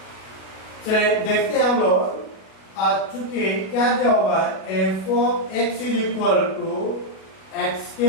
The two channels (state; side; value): late; right; 37 ms